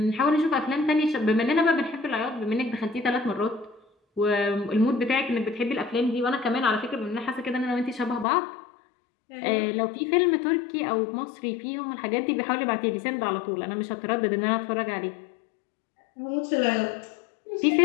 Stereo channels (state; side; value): drops out; right; at 8.2 s